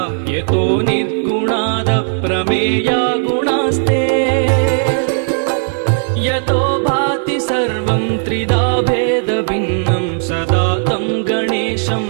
यतो निर्गुणाद प्रमेया गुणास्ते यतो भाति सर्वं त्रिधा भेदभिन्नं सदा तं गणेशं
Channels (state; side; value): silent; left; digital silence